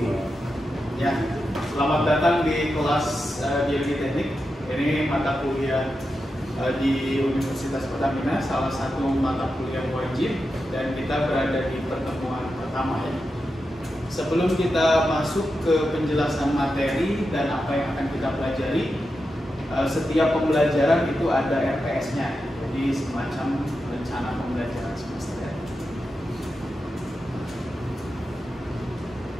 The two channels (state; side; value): normal; both; correlation 0.89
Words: Ya, selamat datang di kelas Biologi Teknik. Ini mata kuliah di Universitas Pertamina, salah satu mata kuliah wajib, dan kita berada di pertemuan pertama ya. Sebelum kita masuk ke penjelasan materi dan apa yang akan kita pelajari, setiap pembelajaran itu ada RPS-nya. Jadi semacam rencana pembelajaran semester ya.